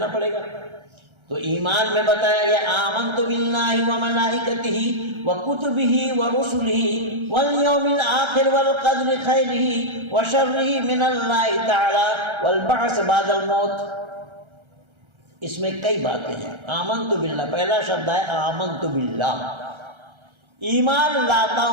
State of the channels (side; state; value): left; late; 1.3 ms